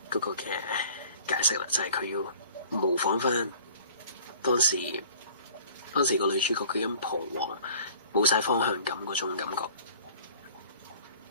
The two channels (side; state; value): both; inverted; correlation -0.49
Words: 嗰個嘅解釋啦，就係佢要模仿翻當時個女主角佢咁彷徨、冇晒方向感嗰種感覺。